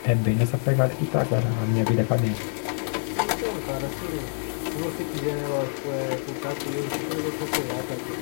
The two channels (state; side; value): silent; right; 60 dB below the other